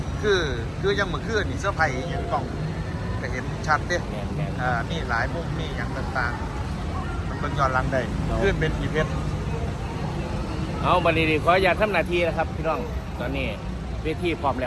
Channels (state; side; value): identical; both; correlation 1.00